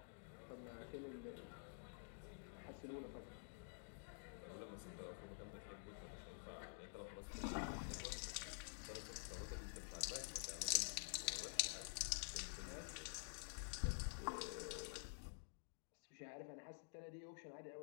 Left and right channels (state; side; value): silent; right; digital silence